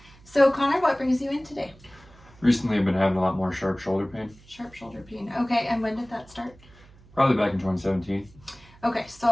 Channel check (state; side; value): noise; right; hum, 25 dB below the sound